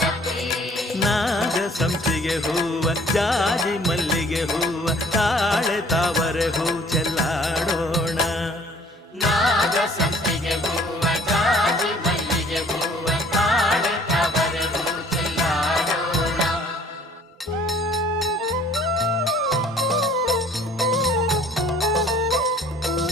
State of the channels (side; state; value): both; normal; correlation 0.55